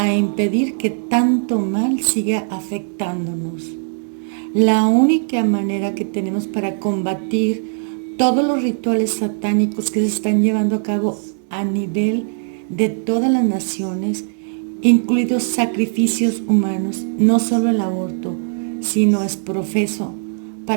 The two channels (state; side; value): silent; left; digital silence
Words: impedir que tanto mal siga afectándonos. La única manera que tenemos para combatir todos los rituales satánicos que se están llevando a cabo a nivel de todas las naciones, incluidos sacrificios humanos, no solo el aborto, sino es profeso